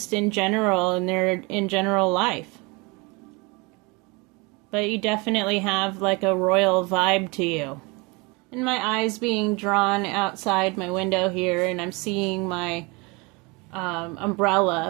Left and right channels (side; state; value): left; quieter; 27.5 dB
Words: in general, in general life. But you definitely have like a royal vibe to you. And my eyes being drawn outside my window here, and I'm seeing my